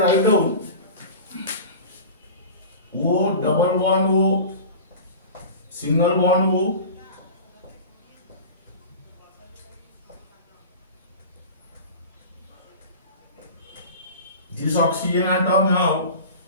down O double bond O, single bond O, this oxygen atom have,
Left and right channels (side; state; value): both; inverted; correlation -0.35